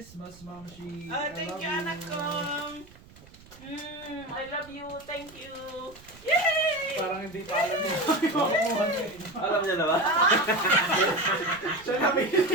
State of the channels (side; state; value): right; noise; rumble, 23 dB below the sound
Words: Mama Shi. Thank you, anak ko. I love you. Thank you. Yay! Parang hindi pa alam niya. Alam niya na ba? Siya na bili.